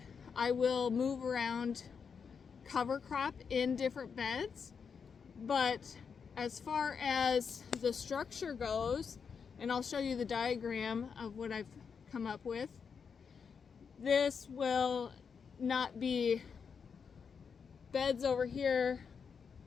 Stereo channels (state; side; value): quieter; right; 6.2 dB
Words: I will move around cover crop in different beds, but as far as the structure goes, and I'll show you the diagram of what I've come up with, this will not be beds over here,